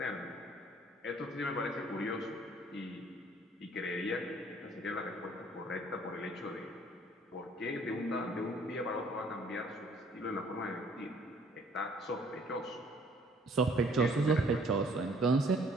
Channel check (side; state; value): both; normal; correlation 0.59